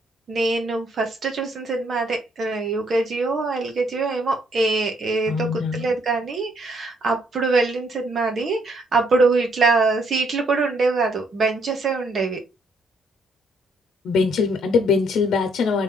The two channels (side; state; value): both; normal; correlation 0.69